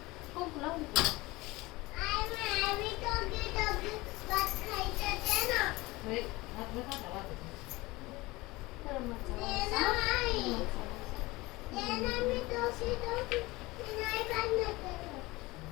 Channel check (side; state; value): right; quieter; 21.2 dB